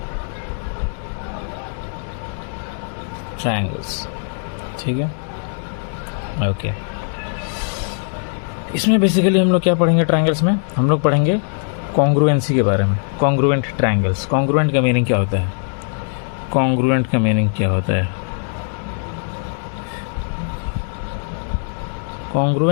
ट्रायंगल्स, ठीक है, ओके। इसमें बेसिकली हम लोग क्या पढ़ेंगे? ट्रायंगल्स में हम लोग पढ़ेंगे कॉन्ग्रुएंसी के बारे में। Congruent triangles. कॉन्ग्रुएंट का मीनिंग क्या होता है? कॉन्ग्रुएंट का मीनिंग क्या होता है?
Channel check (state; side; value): silent; right; 61 dB below the other